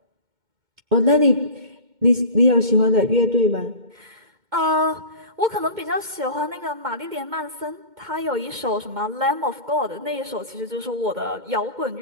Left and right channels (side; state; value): left; late; 2.1 ms